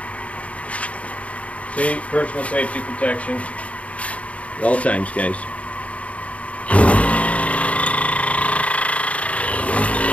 See, personal safety protection at all times, guys.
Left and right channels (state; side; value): late; right; 0.066 ms